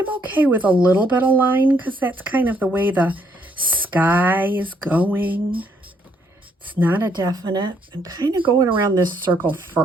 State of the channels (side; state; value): both; normal; correlation 0.70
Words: okay with a little bit of line because that's kind of the way the sky is going. It's not a definite. I'm kind of going around this circle